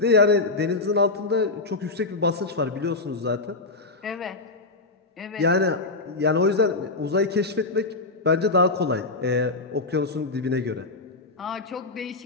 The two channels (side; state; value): right; quieter; 3.4 dB